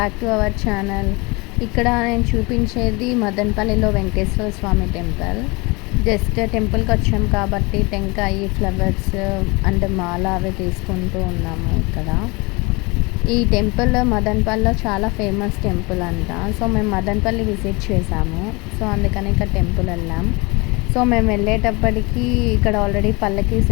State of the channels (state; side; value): quieter; right; 26.3 dB